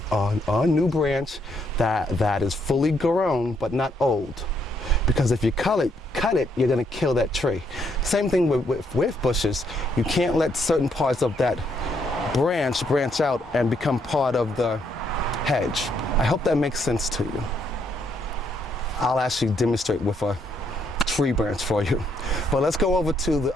new branch that is fully grown but not old. Because if you cut it, you're going to kill that tree. Same thing with bushes. You can't let certain parts of that branch out and become part of the hedge. I hope that makes sense to you. I'll actually demonstrate with a tree branch for you. But let's go over to the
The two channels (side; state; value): both; normal; correlation 0.73